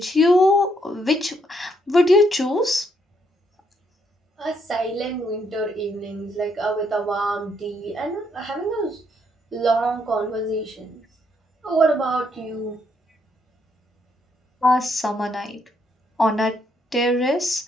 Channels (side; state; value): both; normal; correlation 0.73